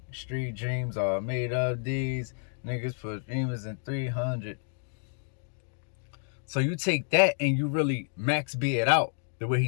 street dreams are made of these. Niggas put dreamers in 300. So you take that and you really Max B it out the way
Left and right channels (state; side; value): silent; right; 58 dB below the other